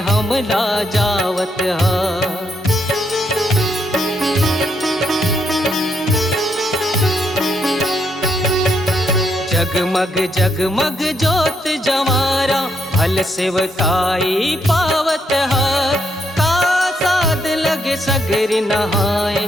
हम ला जावत है। जगमग जगमग जोत जवारा भल सेवकाई पावत है। का साध लगे सगरी नहाए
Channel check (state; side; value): normal; both; correlation 0.76